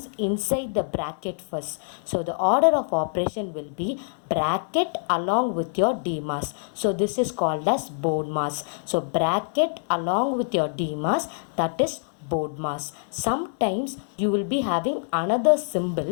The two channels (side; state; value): right; silent; digital silence